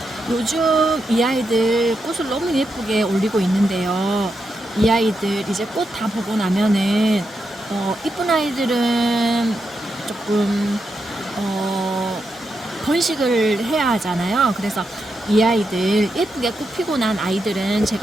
요즘 이 아이들 꽃을 너무 예쁘게 올리고 있는데요. 이 아이들 이제 꽃 다 보고 나면은 이쁜 아이들은 조금 번식을 해야 하잖아요. 그래서 이 아이들 예쁘게 꽃 피고 난 아이들은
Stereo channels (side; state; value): both; normal; correlation 0.85